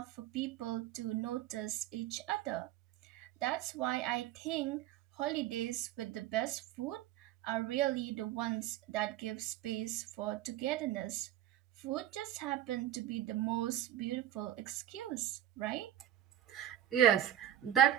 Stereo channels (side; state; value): left; quieter; 12.1 dB